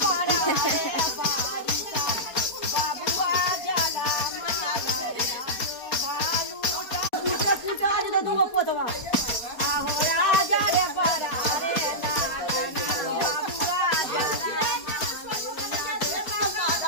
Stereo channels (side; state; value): right; late; 4.3 ms